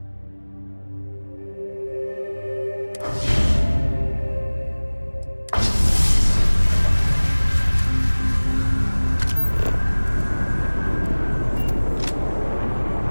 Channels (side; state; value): both; inverted; correlation -1.00